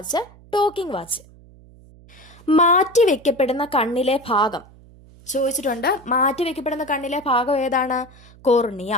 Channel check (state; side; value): noise; right; hum, 24 dB below the sound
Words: ടോക്കിംഗ് വാച്ച്. മാറ്റിവെക്കപ്പെടുന്ന കണ്ണിലെ ഭാഗം ചോദിച്ചിട്ടുണ്ട്. മാറ്റിവെക്കപ്പെടുന്ന കണ്ണിലെ ഭാഗം ഏതാണ്? കോർണിയ.